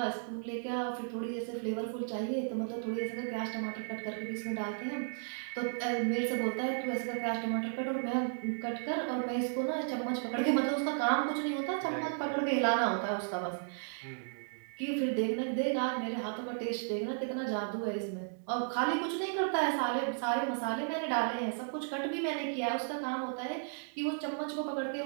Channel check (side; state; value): left; silent; digital silence